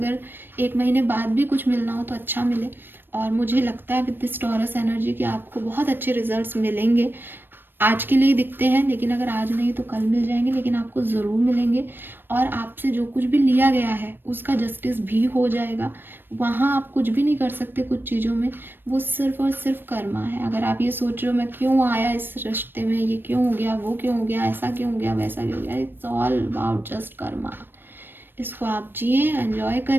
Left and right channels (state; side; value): late; left; 0.097 ms